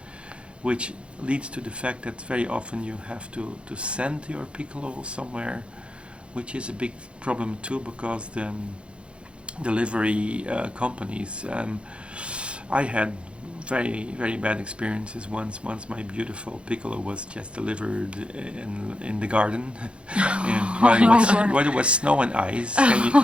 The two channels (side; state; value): left; late; 0.058 ms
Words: which leads to the fact that very often you have to send your piccolo somewhere, which is a big problem too, because the delivery companies, I had very bad experiences. Once my beautiful piccolo was just delivered in the garden, and while it was snow and ice.